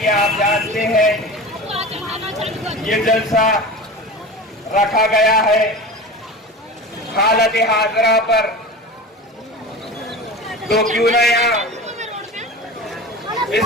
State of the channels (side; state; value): both; normal; correlation 0.31